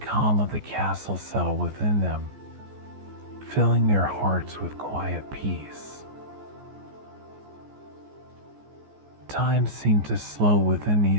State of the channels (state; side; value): late; left; 14 ms